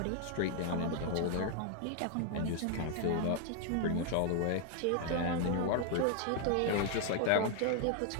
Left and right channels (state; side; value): different; both; correlation 0.00